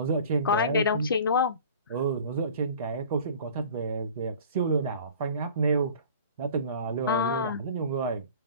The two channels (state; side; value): inverted; both; correlation -0.44